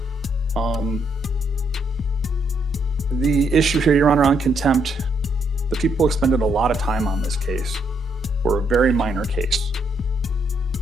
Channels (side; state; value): both; normal; correlation 0.74